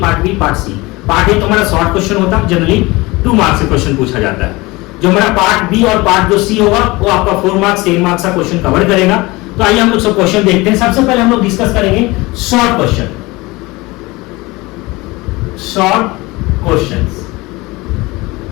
part B, part C. Part A तो हमारा शॉर्ट क्वेश्चन होता है, जनरली 2 मार्क्स से क्वेश्चन पूछा जाता है। जो हमारा पार्ट बी और पार्ट जो सी होगा वो आपका 4 मार्क्स 10 मार्क्स का क्वेश्चन कवर करेगा। तो आइए हम लोग सब क्वेश्चन देखते हैं। सबसे पहले हम लोग डिस्कस करेंगे शॉर्ट क्वेश्चन। शॉर्ट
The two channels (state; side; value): quieter; right; 22.4 dB